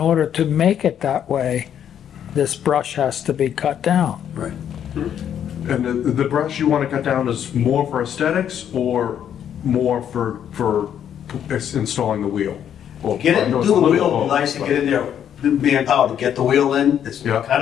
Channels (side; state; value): right; quieter; 9.4 dB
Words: to make it that way, this brush has to be cut down. Right. And the brush you want to cut down is more for aesthetics or more for installing the wheel? Or- Get it, I know do it's the a little wheel, both, nice to but- get in there, manpower to get the wheel in. It's Yeah. kind